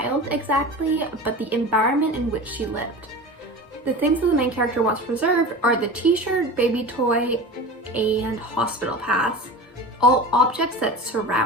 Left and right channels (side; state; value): both; normal; correlation 0.32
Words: exactly, but the environment in which she lived. The things that the main character wants preserved are the t-shirt, baby toy, and hospital pass, all objects that